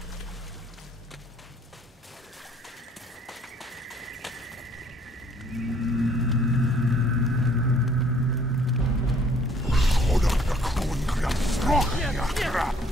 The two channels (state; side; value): normal; both; correlation 0.61